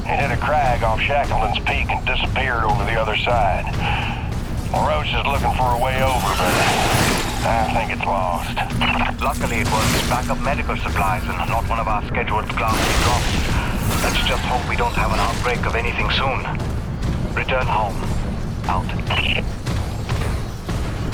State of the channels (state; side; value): identical; both; correlation 1.00